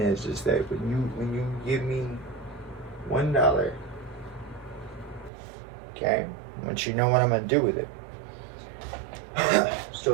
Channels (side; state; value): left; drops out; at 5.3 s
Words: is that when you give me $1, okay, I want you to know what I'm going to do with it.